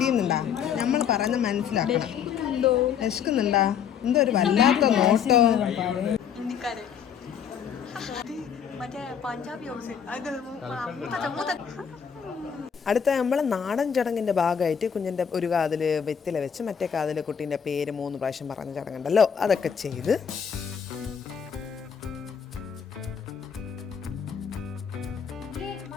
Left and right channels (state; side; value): quieter; right; 7.7 dB